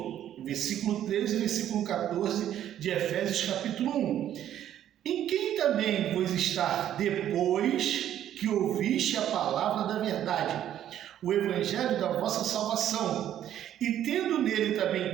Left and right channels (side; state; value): left; quieter; 11.1 dB